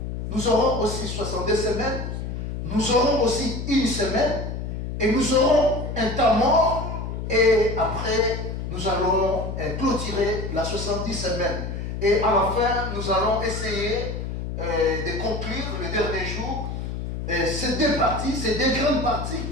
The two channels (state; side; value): noise; left; hum, 5 dB below the sound